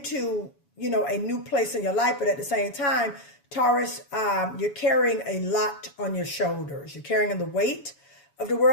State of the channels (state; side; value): late; right; 7.1 ms